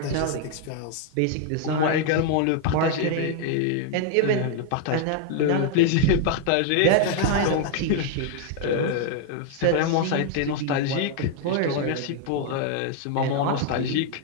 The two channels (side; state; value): both; different; correlation 0.00